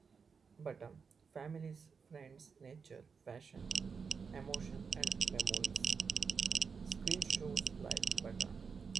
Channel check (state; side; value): quieter; left; 5.7 dB